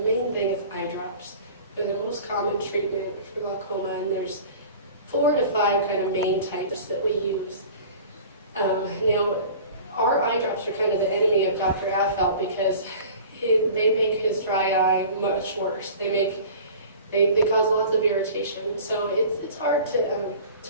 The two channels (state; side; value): inverted; both; correlation -0.42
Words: thing is eye drops. They're the most common treatment for glaucoma, and there's 4 to 5 kind of main types that we use. Now, our eye drops are kind of the enemy of Dr. Affelt because they make his dry eye much worse. They cause lots of irritation. So it's hard